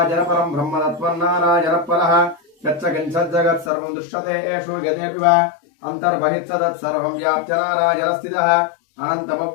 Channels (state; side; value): drops out; right; at 3.7 s